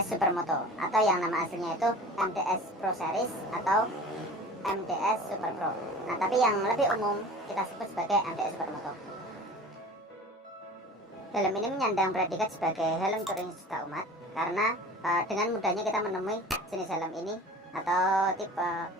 Supermoto atau yang nama aslinya itu MDS Pro Series atau MDS Super Pro. Nah, tapi yang lebih umum kita sebut sebagai MDS Supermoto. Helm ini menyandang predikat sebagai helm touring sejuta umat karena dengan mudahnya kita menemui jenis helm ini atau tipe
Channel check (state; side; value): normal; both; correlation 0.40